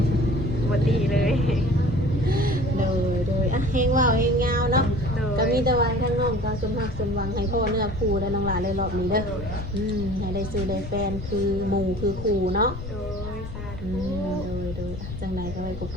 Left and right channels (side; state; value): left; noise; rumble, 9 dB below the sound